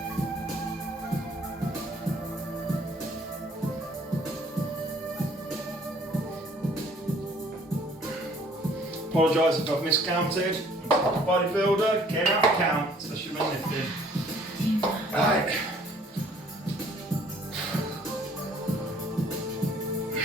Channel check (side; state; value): both; normal; correlation 0.58